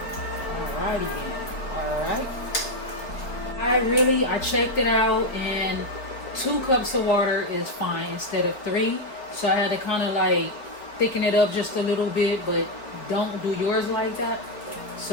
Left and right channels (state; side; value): late; right; 3.7 ms